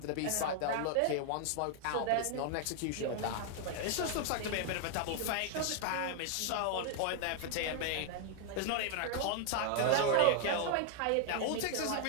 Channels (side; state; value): both; different; correlation 0.00